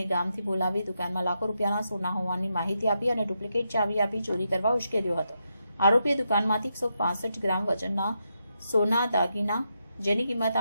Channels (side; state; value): both; inverted; correlation -0.83